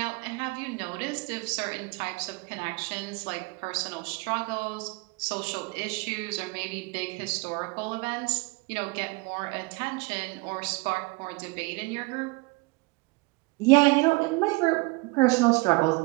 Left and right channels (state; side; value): quieter; left; 26.8 dB